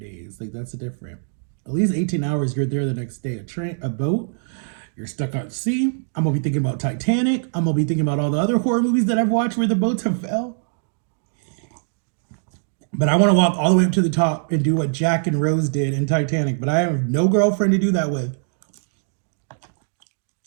Like that's a different. At least 18 hours, you're there the next day. A boat, you're stuck at sea. I'm gonna be thinking about Titanic. I'm gonna be thinking about all the other horror movies that I've watched where the boats have fell. But I want to walk all the way up to the top and do what Jack and Rose did in Titanic. But I have no girlfriend to do that with.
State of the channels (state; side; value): silent; left; digital silence